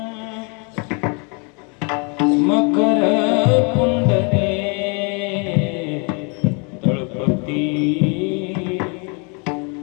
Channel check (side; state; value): right; quieter; 34.5 dB